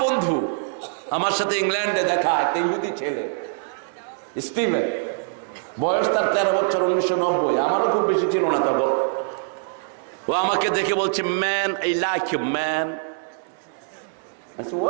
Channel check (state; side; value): silent; left; digital silence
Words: বন্ধু, আমার সাথে ইংল্যান্ডে দেখা একটা ইহুদি ছেলে স্টিভেন, বয়স তার 13 বছর, 1990, আমারও খুব বেশি ছিল না তখন। ও আমাকে দেখে বলছে, man I like you man. I said,